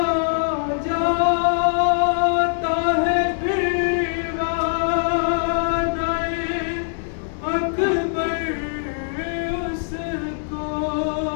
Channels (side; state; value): right; silent; digital silence